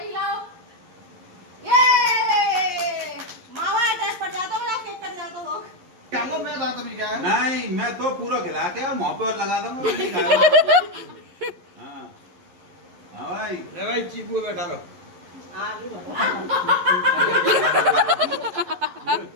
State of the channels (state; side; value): late; left; 11 ms